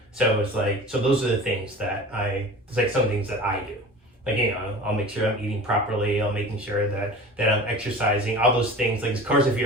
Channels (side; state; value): both; normal; correlation 0.38